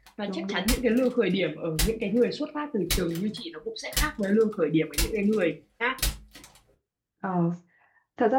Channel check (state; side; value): identical; both; correlation 1.00